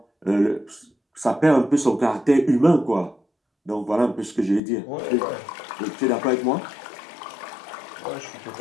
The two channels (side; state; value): right; drops out; at 4.6 s